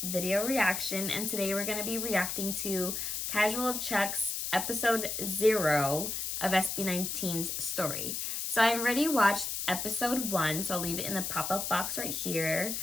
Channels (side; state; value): left; noise; hiss, 3 dB below the sound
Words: video reaction, and today we're going to be reacting to Casual Chuck's episode 0 of SB19's story. So I already watched episode 1, so I'll leave it in the pop-up box right here.